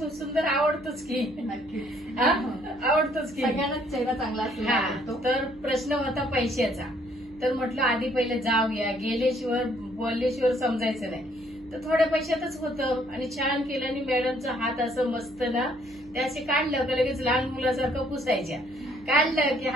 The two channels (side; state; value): right; noise; hum, 25 dB below the sound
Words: सुंदर आवडतोच की. नक्कीच आवडतोच की. सगळ्यांनाच चेहरा चांगला असतो. तर प्रश्न होता पैशाचा. तर म्हटलं आधी पहिले जाऊया, गेल्याशिवाय बोलल्याशिवाय समजायचं नाही. तर थोड्या पैशातच होतं आणि छान केलं. आणि मॅडमचा हात असं मस्त ना ते असे काढलं का लगेच लहान मुलासारखं पुसायच्या. काढलं की